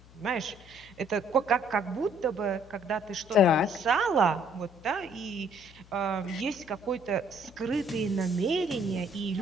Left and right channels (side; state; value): left; noise; hum, 23 dB below the sound